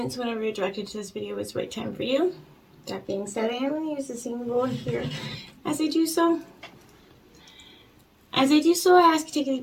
so whenever you're directed to this video, it's the right time for you. That being said, I am going to use the symbol here. As I do so, I ask you to take a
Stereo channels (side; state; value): both; identical; correlation 1.00